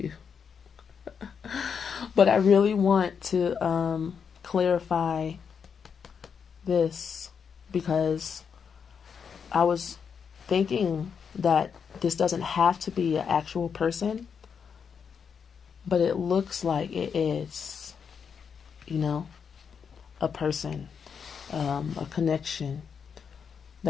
But I really want to clarify this because I was thinking that this doesn't have to be an actual person, but it looks like it is, a person, a connection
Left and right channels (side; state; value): right; quieter; 6.6 dB